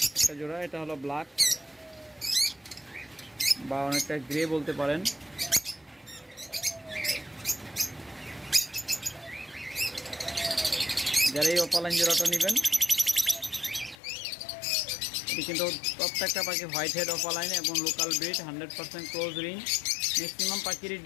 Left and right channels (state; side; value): drops out; right; at 14.0 s